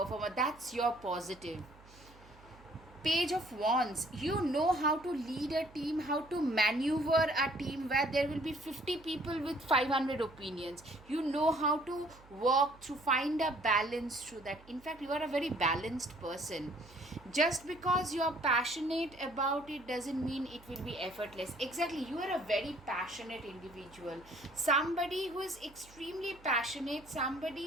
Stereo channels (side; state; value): right; noise; hum, 24 dB below the sound